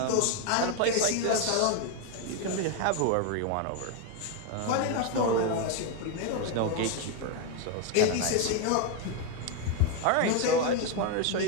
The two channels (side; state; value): both; different; correlation 0.01